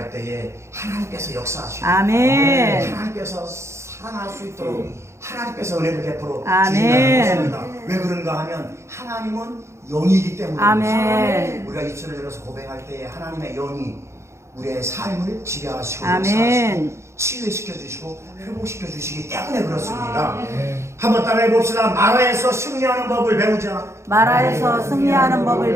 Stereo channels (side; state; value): left; late; 0.13 ms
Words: 때에 하나님께서 역사하시고 아멘. 하나님께서 살아날 수 있도록 하나님께서 은혜를 베풀어 아멘. 주신다는 것입니다. 왜 그런가 하면 하나님은 영이기 때문입니다. 아멘. 우리가 입술을 열어서 고백할 때에 하나님의 영이 우리의 삶을 지배하시고 아멘. 치유시켜 주시고 회복시켜 주시기 때문에 그렇습니다. 한번 따라해 봅시다. 마라에서 승리하는 법을 배우자. 마라에서 승리하는 법을